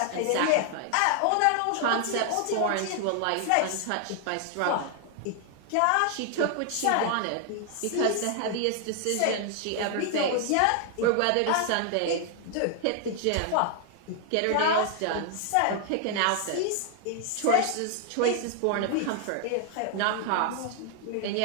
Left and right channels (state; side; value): different; both; correlation 0.00